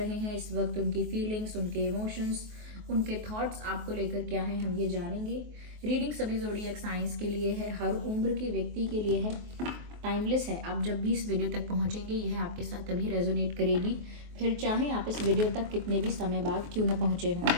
हैं, इस वक्त उनकी फीलिंग्स, उनके इमोशंस, उनके थॉट्स आपको लेकर क्या हैं, हम ये जानेंगे। रीडिंग सभी ज़ोडिएक साइंस के लिए है, हर उम्र के व्यक्ति के लिए है, टाइमलेस है। आप जब भी इस वीडियो तक पहुंचेंगे यह आपके साथ तभी रेजोनेट करेगी, फिर चाहे आप इस वीडियो तक कितने भी समय बाद क्यों ना पहुंचे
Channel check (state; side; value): late; left; 23 ms